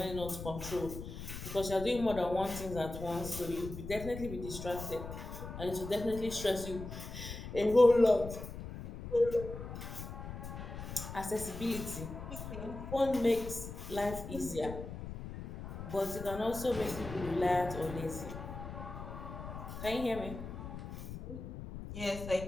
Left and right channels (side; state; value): left; noise; rumble, 9 dB below the sound